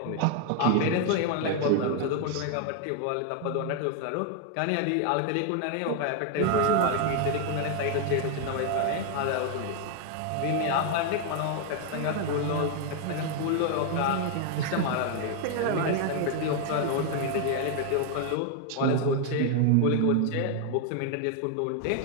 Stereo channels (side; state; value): both; different; correlation 0.00